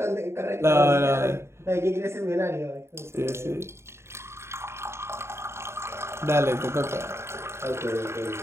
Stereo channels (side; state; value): left; late; 0.13 ms